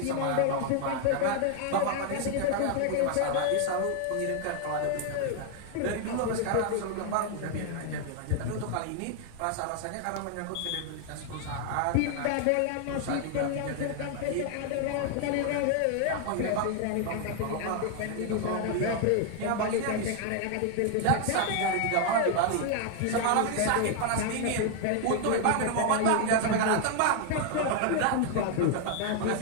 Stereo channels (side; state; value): both; different; correlation 0.00